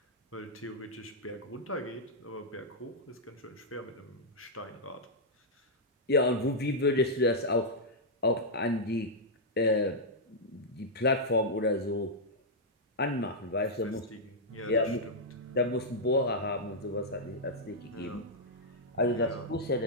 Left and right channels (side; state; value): both; normal; correlation -0.06